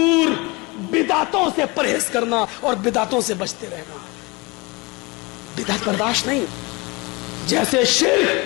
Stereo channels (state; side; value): quieter; right; 25.7 dB